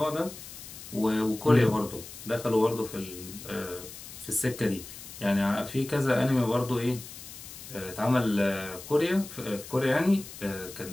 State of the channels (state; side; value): noise; left; hiss, 14 dB below the sound